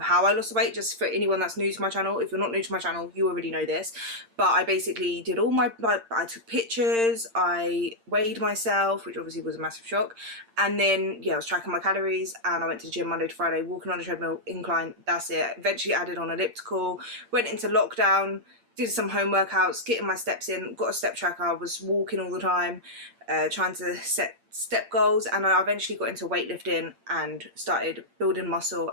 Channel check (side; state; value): left; late; 8.8 ms